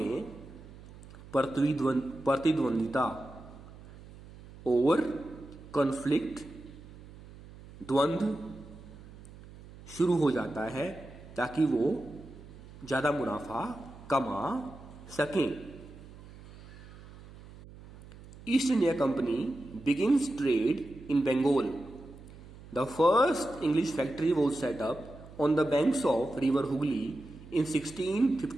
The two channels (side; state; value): right; noise; hum, 18 dB below the sound